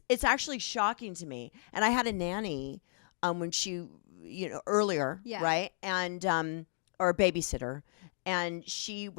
actually shocking to me. And I had a nanny when she, earlier, Yeah. right? And or a babysitter, and she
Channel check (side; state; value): right; silent; digital silence